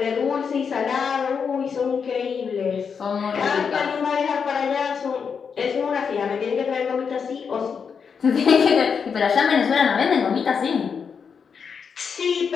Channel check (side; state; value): right; quieter; 6.3 dB